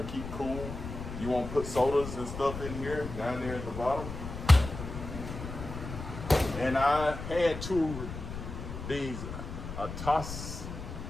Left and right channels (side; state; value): left; noise; rumble, 8 dB below the sound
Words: to keep cool. You want to put sodas and stuff in here, down there at the bottom. And I had two these, a